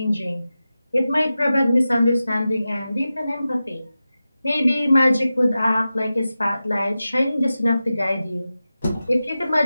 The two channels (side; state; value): both; inverted; correlation -0.94